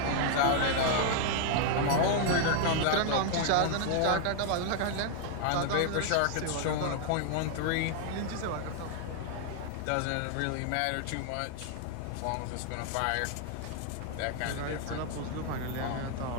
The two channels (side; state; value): both; different; correlation 0.00